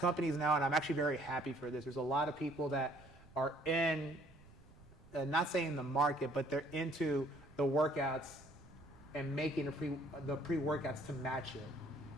companies now, and I'm actually very happy for this. There's a lot of people that are in, not saying the market, but they're into the workouts and making the pre-workouts to match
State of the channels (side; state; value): right; noise; rumble, 23 dB below the sound